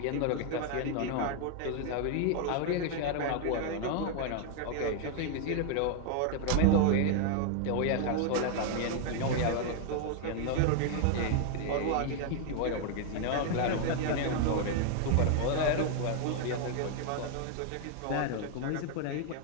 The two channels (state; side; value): different; both; correlation 0.00